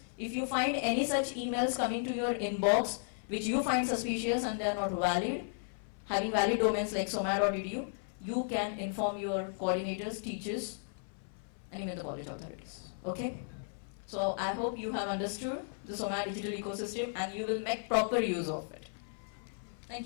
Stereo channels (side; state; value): right; silent; 55 dB below the other